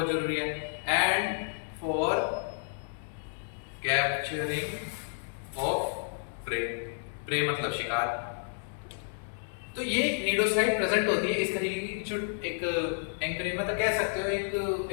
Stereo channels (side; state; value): right; silent; digital silence